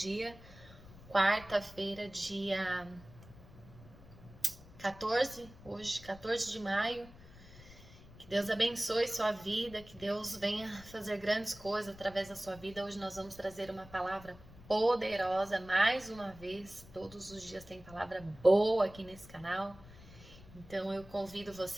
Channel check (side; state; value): left; noise; rumble, 20 dB below the sound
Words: quarta-feira, dia 14, hoje, 14 de maio. Que Deus abençoe sua vida, que Deus venha fazer grandes coisas através da sua vida. Hoje nós vamos trazer uma palavra poderosa, mais uma vez, todos os dias tem palavra boa aqui nesse canal. Então eu convido